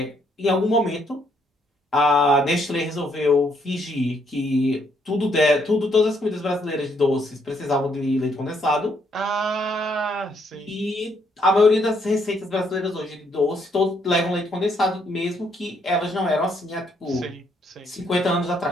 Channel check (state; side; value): normal; both; correlation 0.71